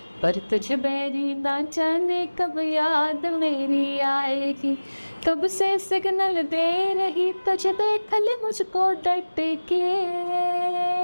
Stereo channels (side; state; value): both; inverted; correlation -1.00